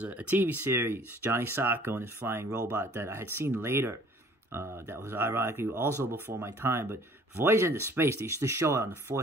a TV series, Johnny Sokko and his flying robot that I had seen later. That was ironically also before my time. But Voyage into Space, they used to show it on the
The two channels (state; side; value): normal; both; correlation 0.54